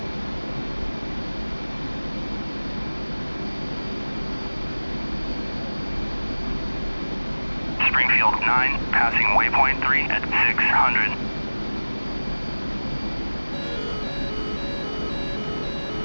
Springfield 9, passing waypoint 3 at 600.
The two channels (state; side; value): inverted; both; correlation -1.00